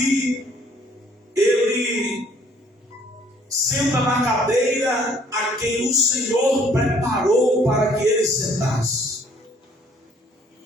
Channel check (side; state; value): both; normal; correlation 0.60